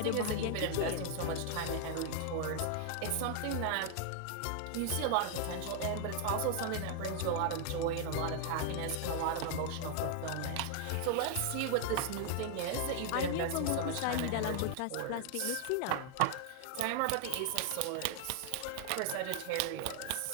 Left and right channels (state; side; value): different; both; correlation 0.00